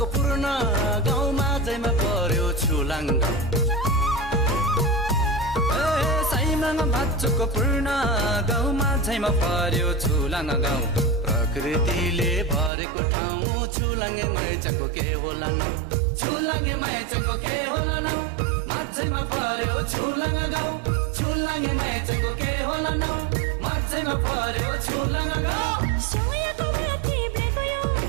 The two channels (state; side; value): drops out; left; at 12.7 s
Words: पूर्ण गाउँमा जैमा पर्यो छुलाङ्ग, साइमाङ भाचुको पूर्ण गाउँमा झैमा पर्यो छुलाङ्ग गाउँ। प्रकृतिले भरेको ठाउँ, छुलाङ्गे मैचाङको के होला न, छुलाङ्गे मैचाङको के होला न। माझैमा पर्यो छुलाङ्ग गाउँ, छुलाङ्गे मैचाङको के होला न, माझैमा पर्यो छुलाङ्ग गाउँ। सोयाको माथि ब्रेको